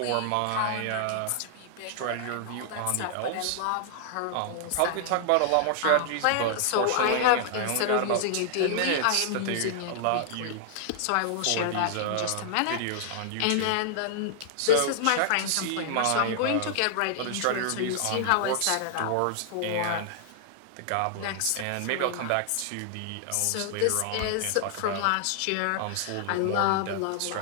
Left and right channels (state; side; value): different; both; correlation -0.01